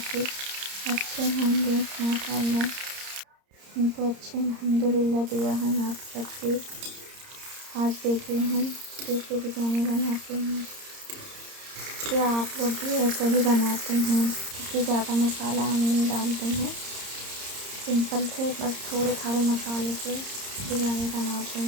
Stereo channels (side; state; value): left; late; 30 ms